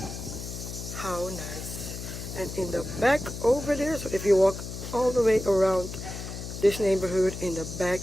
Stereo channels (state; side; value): noise; left; hum, 8 dB below the sound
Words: How nice. And in the back over there, so if you walk all the way around this neighborhood, in the back